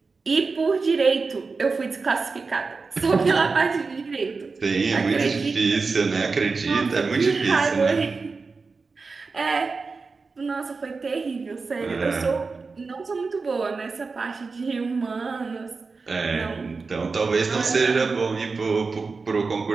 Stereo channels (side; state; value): left; quieter; 4.3 dB